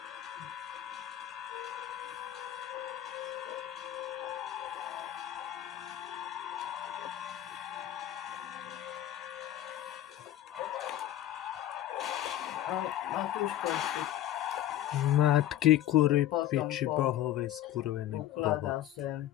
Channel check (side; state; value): right; quieter; 12.6 dB